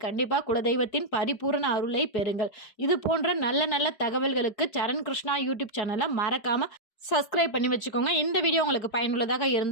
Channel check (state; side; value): late; right; 4.7 ms